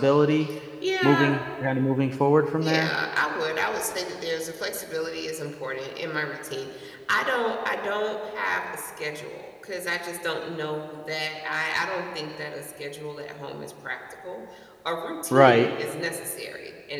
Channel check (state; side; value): identical; both; correlation 1.00